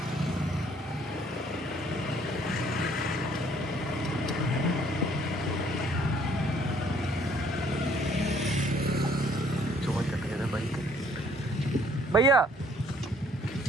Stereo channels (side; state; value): both; normal; correlation 0.62